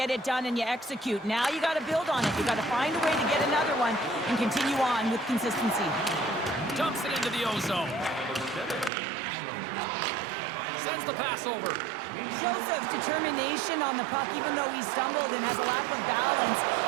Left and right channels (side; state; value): left; drops out; at 8.9 s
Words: it done, and you execute. Now you got to build on it. You got to find a way to get another one and continue on with consistency. Dumps it into the ozone. Sends the pass over. Shows of determination on the puck, even though he stumbled and has a lack of balance.